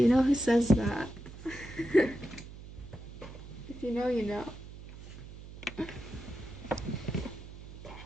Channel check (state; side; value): noise; right; hum, 14 dB below the sound